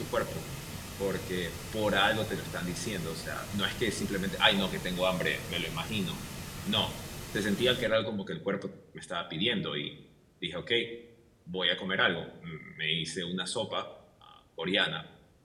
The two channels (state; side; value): identical; both; correlation 1.00